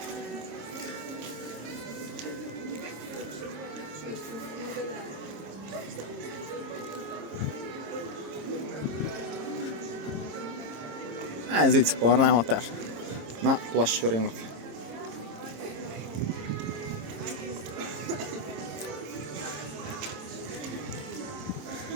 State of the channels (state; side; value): late; left; 26 ms